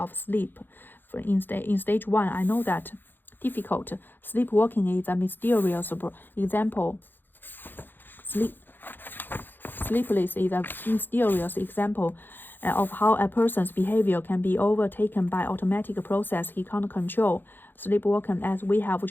sleep. In stage 1, I know that difficult. Sleepwalking is a mysterious example. Sleepless is a mysterious example of how a person's behavior can be overtaken by automatic process he can't control. Sleepwalking, as we have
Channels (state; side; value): late; right; 0.095 ms